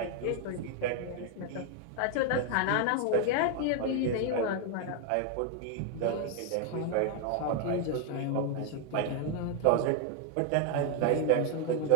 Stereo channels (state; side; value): different; both; correlation 0.01